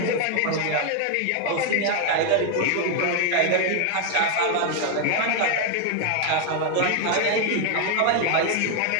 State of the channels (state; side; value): different; both; correlation 0.01